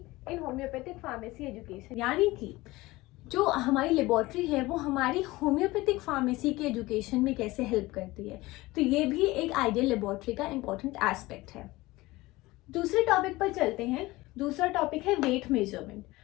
in homoeopathic pharmacy education, यानी कि जो हमारी लेबोरेटरी है वो हमारी होम्योपैथिक फार्मेसी के एजुकेशन में कैसे हेल्प करती है। तो ये भी एक आइडियल लेबोरेटरी का इंपॉर्टेंट एस्पेक्ट है। दूसरे टॉपिक पर चलते हैं। दूसरा टॉपिक है वेट मेजरमेंट।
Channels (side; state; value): right; quieter; 19.9 dB